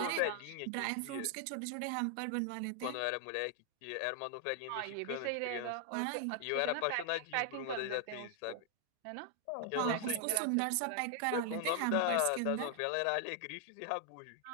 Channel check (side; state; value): both; different; correlation 0.00